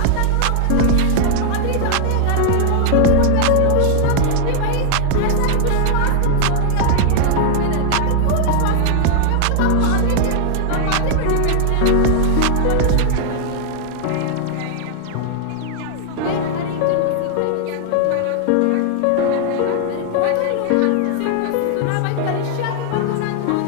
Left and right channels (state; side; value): different; both; correlation 0.00